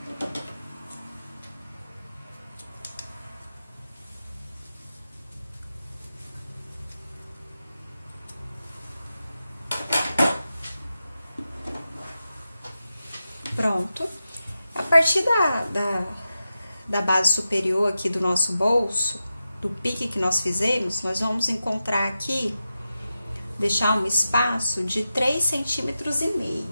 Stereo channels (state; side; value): inverted; both; correlation -0.91